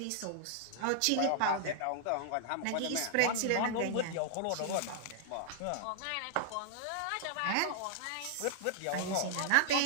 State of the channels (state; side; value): different; both; correlation -0.01